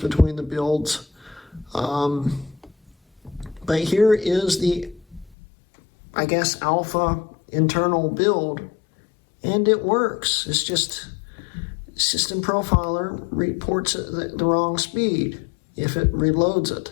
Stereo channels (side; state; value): right; drops out; at 5.4 s